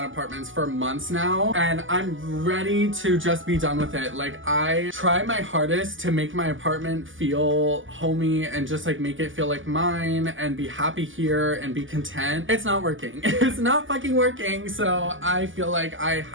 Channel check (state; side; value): late; left; 0.57 ms